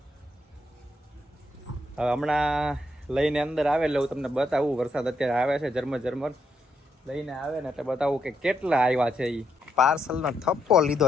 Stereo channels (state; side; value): normal; both; correlation 0.78